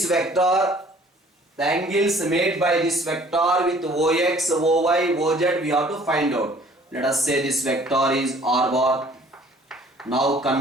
vector, the angles made by this vector with ox, oy, oz, we have to find out. Let us say this vector is r bar. Now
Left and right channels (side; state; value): both; normal; correlation 0.55